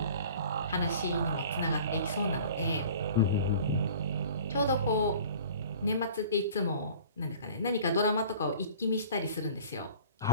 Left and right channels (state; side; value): inverted; both; correlation -0.45